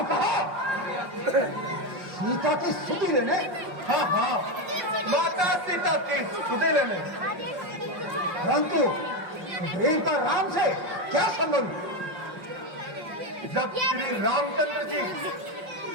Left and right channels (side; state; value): left; late; 5.6 ms